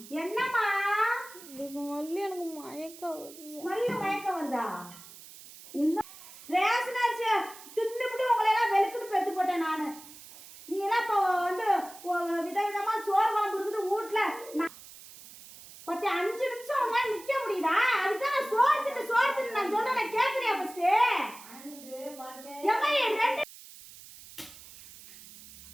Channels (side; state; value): right; noise; hiss, 18 dB below the sound